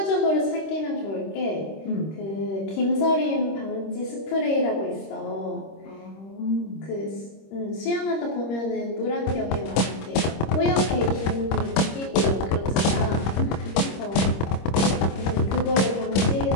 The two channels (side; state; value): right; late; 26 ms